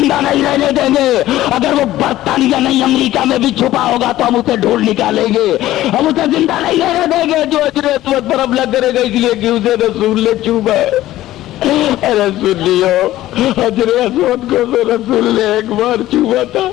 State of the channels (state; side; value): quieter; right; 14.9 dB